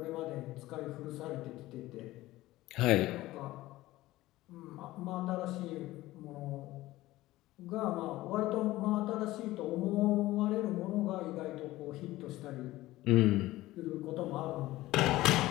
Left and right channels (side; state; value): right; quieter; 17.2 dB